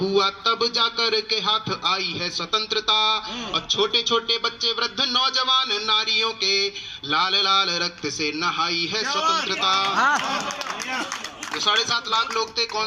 तब जाकर के हाथ आई है स्वतंत्रता। और छोटे छोटे बच्चे वृद्ध नौजवान नारियों के लाल लाल रक्त से नहाई है स्वतंत्रता। जो 7.5 लाख लोग थे,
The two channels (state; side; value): identical; both; correlation 1.00